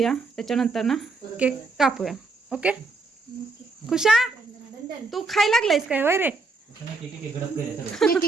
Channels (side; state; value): left; quieter; 3.7 dB